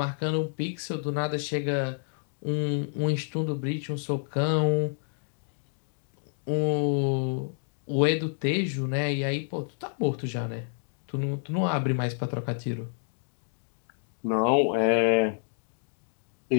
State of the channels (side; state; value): right; silent; digital silence